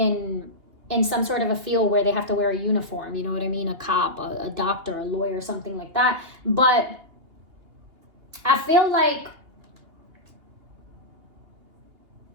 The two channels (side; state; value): left; late; 2.8 ms